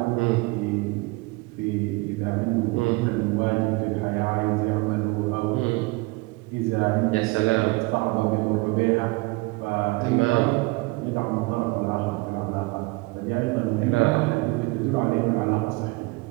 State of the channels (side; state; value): left; quieter; 24.5 dB